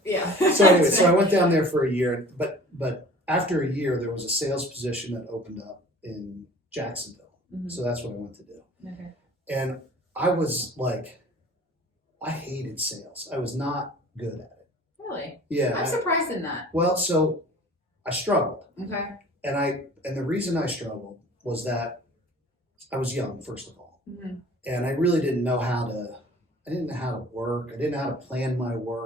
Yeah. So anyway, so I went down there for a year, but after a year, there was a sales position that opened up in Jacksonville. Mhm. So that's what I went to do. Okay. And I was like, I hated sales. I was not good at it. Really? Yeah. I'm surprised in that. Well, so I struggled. Okay. And the reason I struggled was that I was young, first of all. Mm-hmm. And I really didn't know how to work. I didn't know how to plan my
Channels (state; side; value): normal; both; correlation 0.46